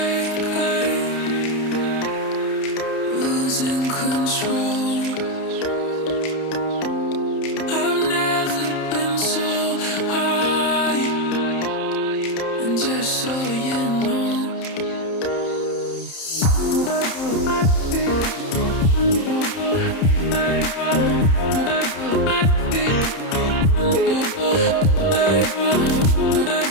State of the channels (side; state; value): right; late; 31 ms